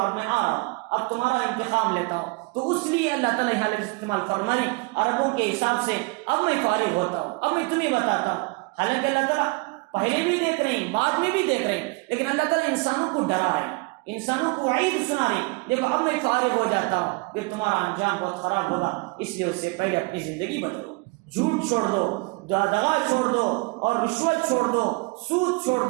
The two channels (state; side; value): quieter; left; 28.2 dB